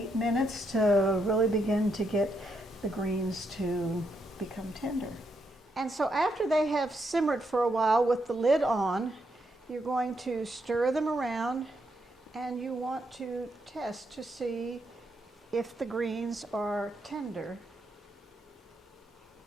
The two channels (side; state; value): both; normal; correlation 0.79